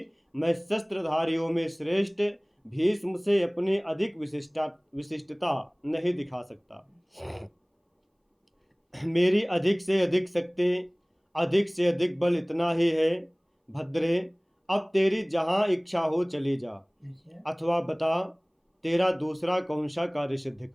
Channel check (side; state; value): both; identical; correlation 1.00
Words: मैं शस्त्रधारियों में श्रेष्ठ भीष्म से अपनी अधिक विशिष्टता नहीं दिखा सकता। मेरी अधिक से अधिक शक्ति, अधिक से अधिक बल इतना ही है। भद्रे, अब तेरी जहाँ इच्छा हो चली जा, अथवा बता तेरा दूसरा कौन सा कार्य सिद्ध